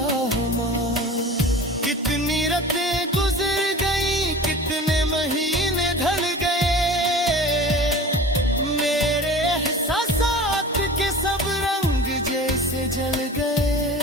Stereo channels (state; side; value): normal; both; correlation 0.38